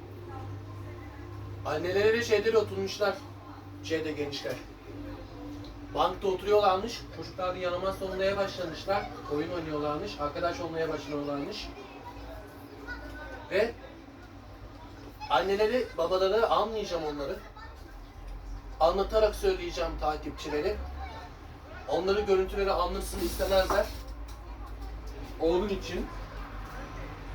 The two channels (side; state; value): both; identical; correlation 1.00